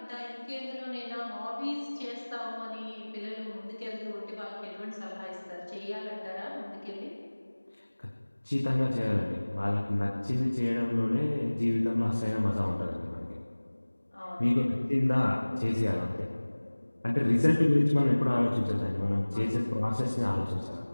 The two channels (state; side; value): inverted; both; correlation -1.00